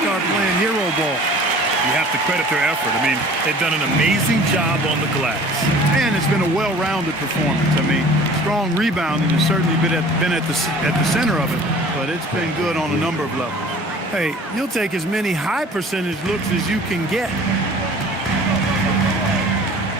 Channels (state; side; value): normal; both; correlation 0.47